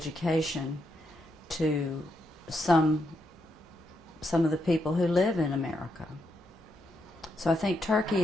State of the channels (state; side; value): normal; both; correlation 0.81